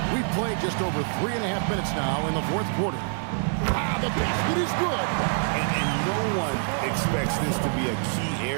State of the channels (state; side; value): silent; left; digital silence